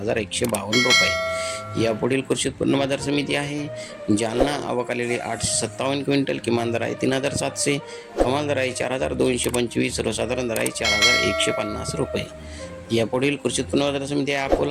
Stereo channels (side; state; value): both; identical; correlation 1.00